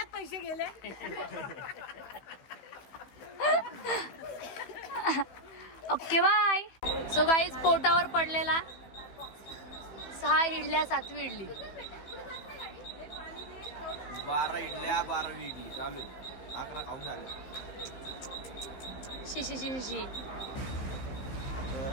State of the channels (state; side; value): late; right; 15 ms